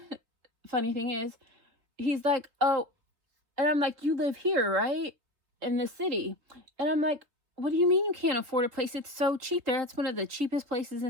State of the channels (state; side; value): late; left; 3.4 ms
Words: funny thing is, he's like, oh, and I'm like, you live here, right? In the city. And I'm like, what do you mean you can't afford a place? It's so cheap there. That's one of the cheapest places